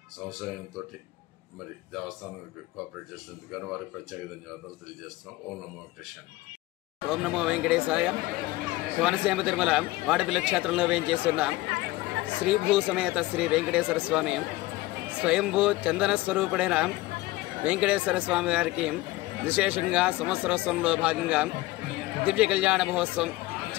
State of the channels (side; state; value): right; quieter; 19.0 dB